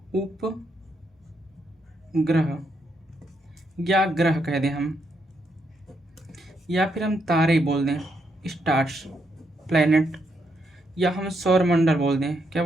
उपग्रह या ग्रह कह दें हम, या फिर हम तारे बोल दें, स्टार्स, प्लैनेट, या हम सौर मंडल बोल दें, क्या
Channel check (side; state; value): both; normal; correlation 0.78